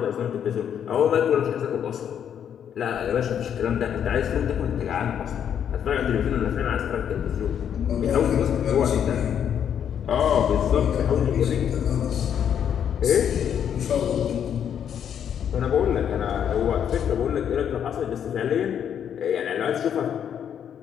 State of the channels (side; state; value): right; quieter; 8.8 dB